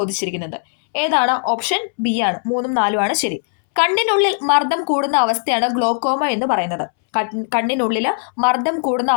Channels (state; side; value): silent; right; 67 dB below the other